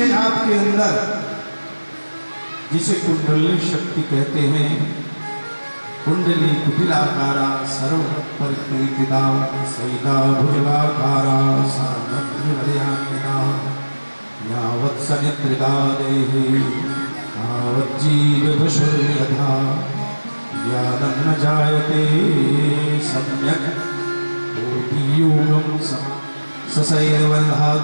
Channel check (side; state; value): both; inverted; correlation -1.00